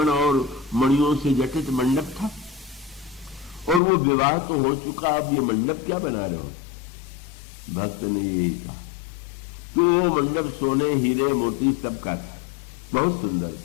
और मणियों से जटित मंडप था। और वो विवाह तो हो चुका, अब ये मंडप क्या बना रहे हो? भक्त ने यही कहा कि वो मंडप सोने, हीरे, मोती सब का था, बहुत सुंदर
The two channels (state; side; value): drops out; right; at 3.8 s